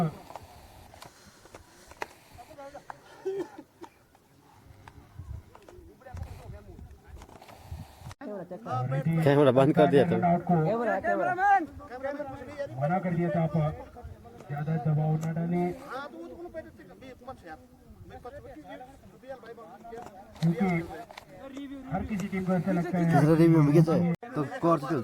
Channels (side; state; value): both; identical; correlation 1.00